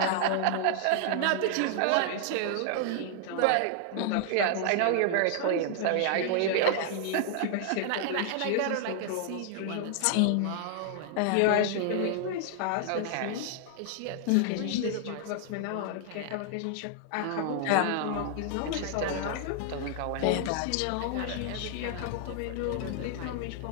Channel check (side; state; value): both; different; correlation 0.00